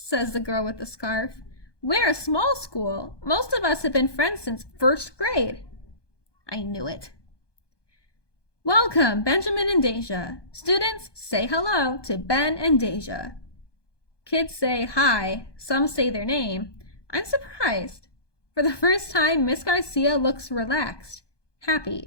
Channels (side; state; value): right; late; 1.2 ms